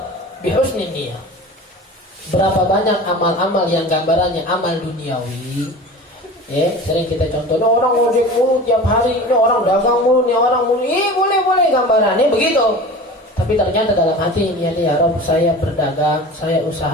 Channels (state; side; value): normal; both; correlation 0.36